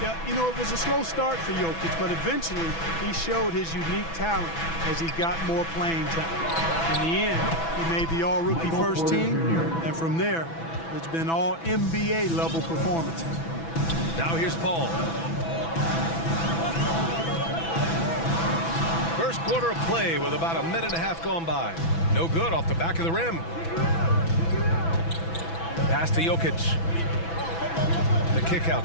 Yeah, you know, it was a slow start for Jokic, but eventually he showed his unique talent as he got more playing time. In the end, he made the all-rookie first team, and from there, it's been all NBA level performances. Now here's Paul. First quarter of play with about a minute and a half gone by. No good off the back of the rim. Pass to Jokic. The kick out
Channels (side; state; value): right; late; 6.0 ms